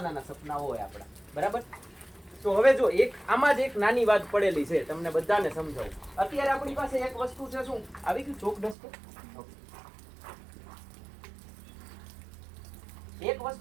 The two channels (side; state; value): left; drops out; at 8.8 s